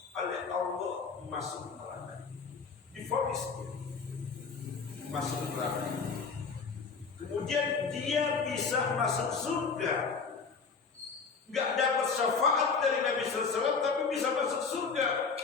oleh Allah masuk neraka, divonis dia masuk neraka, kemudian dia bisa masuk surga, nggak dapat syafaat dari Nabi SAW tapi bisa masuk surga.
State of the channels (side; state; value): right; quieter; 5.1 dB